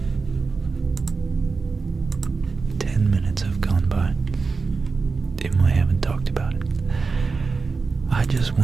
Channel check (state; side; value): quieter; left; 4.5 dB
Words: 10 minutes have gone by and I haven't talked about it. I just